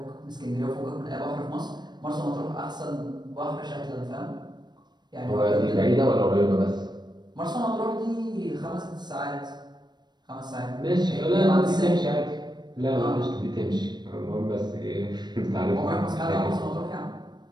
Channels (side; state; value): left; late; 0.21 ms